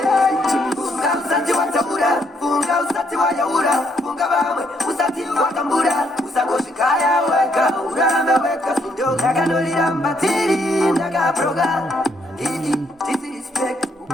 Funga usati watabura, funga usati wayaura, funga bamwe, usati watambura, usakoshikaya weka, urame weka, sindo, nakanolira mbatiri, nakaproga, titi respect,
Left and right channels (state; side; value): normal; both; correlation 0.72